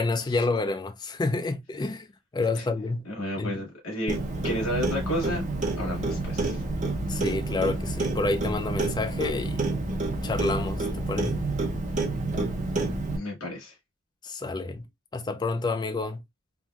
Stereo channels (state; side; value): normal; both; correlation 0.63